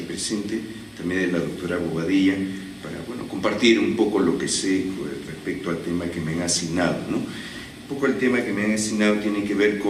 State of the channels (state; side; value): identical; both; correlation 1.00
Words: presente, también de la doctora Bobadilla, para compartir un poco lo que sé respecto al tema que me han asignado, ¿no? Un poco el tema que me han asignado tiene que ver